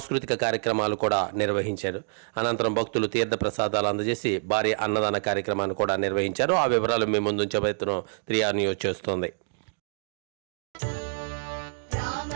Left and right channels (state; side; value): silent; left; digital silence